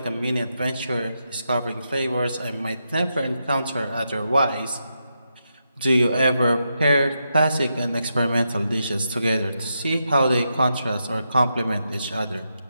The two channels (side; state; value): both; inverted; correlation -0.85